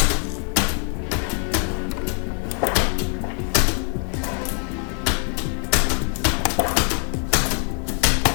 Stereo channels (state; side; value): quieter; right; 39.4 dB